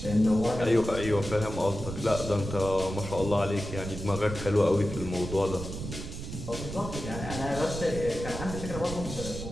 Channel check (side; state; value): right; noise; rumble, 8 dB below the sound